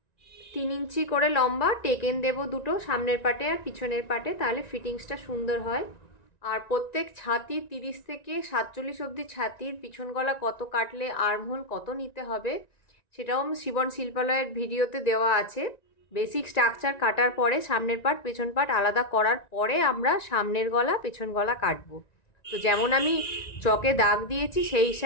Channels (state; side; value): late; right; 1.9 ms